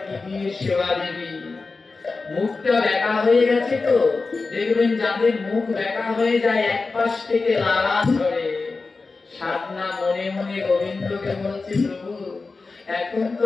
কি দিয়ে সেবা দিবি? মুখটা ব্যাকা হয়ে গেছে তো, দেখবেন যাদের মুখ ব্যাকা হয়ে যায় এক পাশ থেকে লালা ঝরে। সাধনা মনে মনে গোবিন্দকে বলছে, প্রভু এখন তো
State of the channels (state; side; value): quieter; right; 4.0 dB